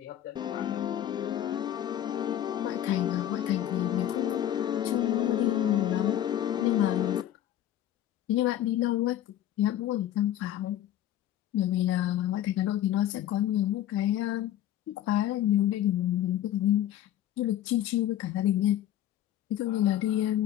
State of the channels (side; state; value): right; quieter; 11.9 dB